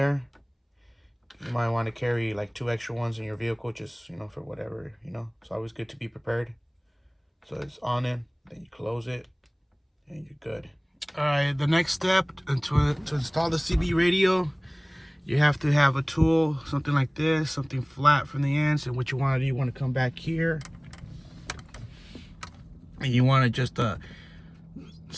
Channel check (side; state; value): both; identical; correlation 1.00